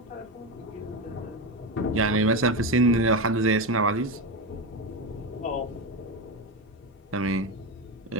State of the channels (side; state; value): both; normal; correlation 0.15